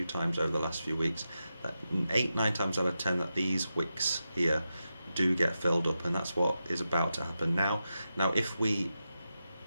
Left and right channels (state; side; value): inverted; both; correlation -0.89